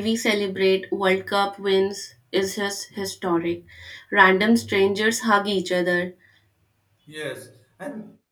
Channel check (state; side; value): identical; both; correlation 1.00